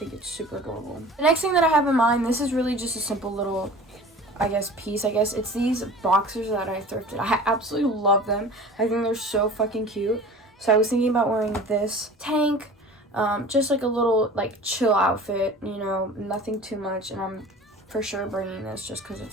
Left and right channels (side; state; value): both; normal; correlation 0.41